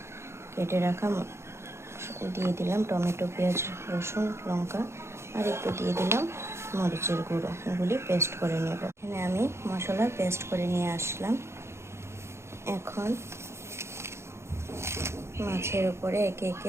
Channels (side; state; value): left; late; 0.13 ms